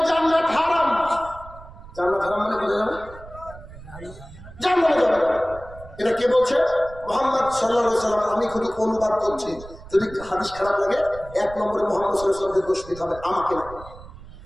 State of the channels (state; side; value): noise; right; rumble, 17 dB below the sound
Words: জান্নাত হারাম। জান্নাত হারাম মানে বোঝা যাবে? জান্নাতে যাবে। এটা কে বলছে? মুহাম্মদ সাল্লাল্লাহু আলাইহি ওয়াসাল্লাম। আমি শুধু অনুবাদ করছি, যদি হাদিস খারাপ লাগে 1 নম্বরে মুহাম্মদ সাল্লাল্লাহু আলাইহি ওয়াসাল্লামকে দোষ দিতে হবে, আমাকে না।